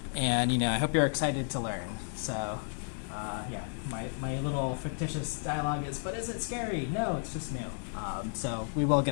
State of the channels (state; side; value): silent; right; 56 dB below the other